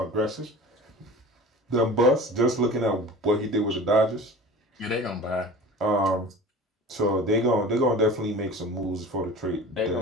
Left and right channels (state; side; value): normal; both; correlation 0.38